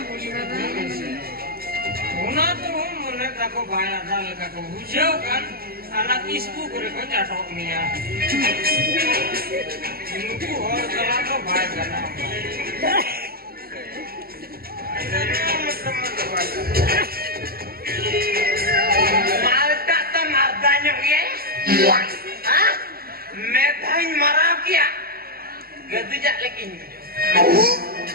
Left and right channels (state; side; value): late; left; 0.44 ms